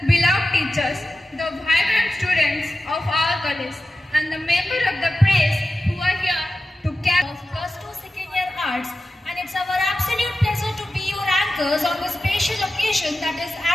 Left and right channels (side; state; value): both; normal; correlation 0.93